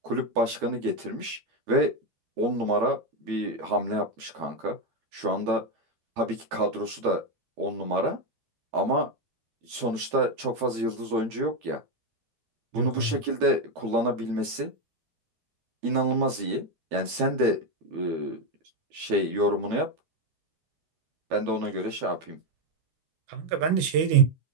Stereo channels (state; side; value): late; left; 12 ms